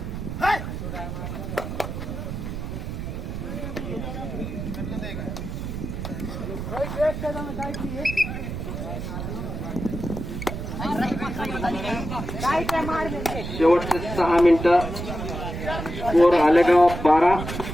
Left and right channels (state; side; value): noise; right; rumble, 6 dB below the sound